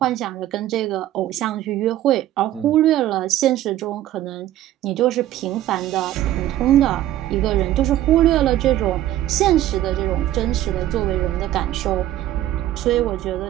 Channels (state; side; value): quieter; left; 13.5 dB